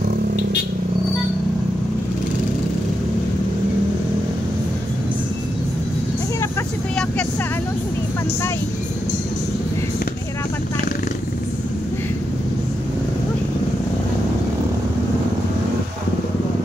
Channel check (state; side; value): normal; both; correlation 0.85